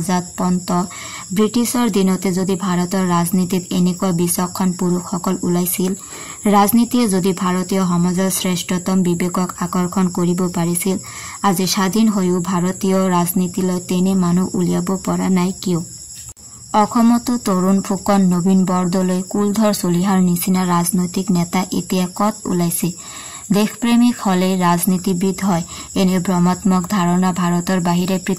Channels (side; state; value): both; identical; correlation 1.00